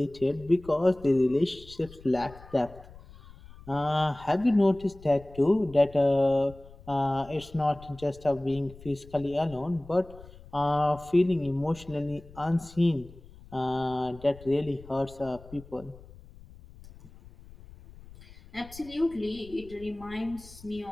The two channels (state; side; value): noise; left; rumble, 20 dB below the sound